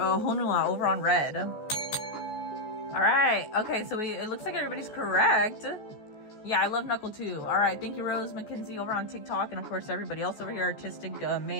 over on red. All right. Okay, so it looks like everybody's correct. Yeah, I love Knuckle too. All right. Thank you, Rose McKenzie over on TikTok, and of course everybody else over here, Artistic,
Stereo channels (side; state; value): right; late; 14 ms